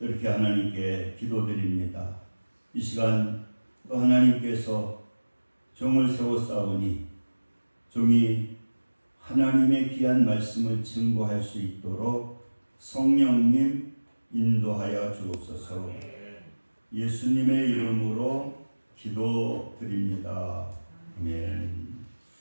하나님께 기도드립니다. 이 시간 또 하나님께서 종을 세웠사오니 종이 하나님의 귀한 말씀을 증거할 수 있도록 성령님 인도하여 주옵소서. 예수님의 이름으로 기도드립니다. 아멘.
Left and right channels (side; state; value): both; inverted; correlation -1.00